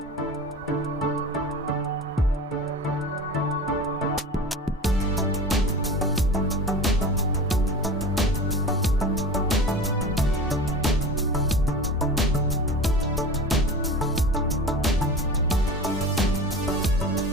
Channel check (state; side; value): normal; both; correlation 0.34